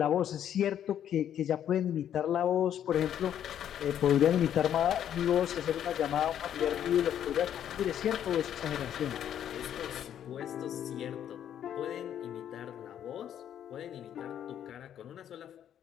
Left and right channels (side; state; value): right; quieter; 10.0 dB